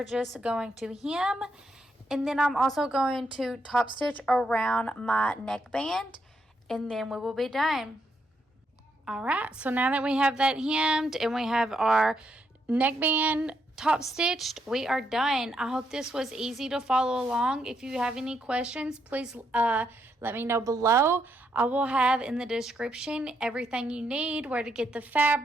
just going to hem, and then I'm also going to top stitch around my neckband, and then we will be done. Alright, so now that we have that hemmed and we have our neckband top stitched, we are done. I hope this was easy to follow along. If you have any questions, please let me know below. I will have in the description everything you need, where to get the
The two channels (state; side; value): normal; both; correlation 0.78